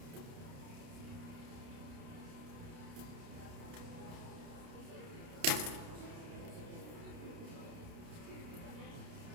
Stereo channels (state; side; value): late; left; 30 ms